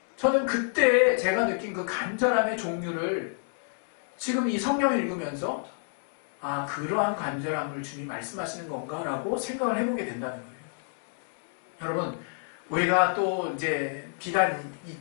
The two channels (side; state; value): right; silent; 58 dB below the other